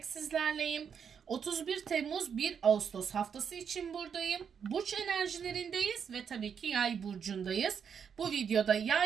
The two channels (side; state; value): left; quieter; 7.2 dB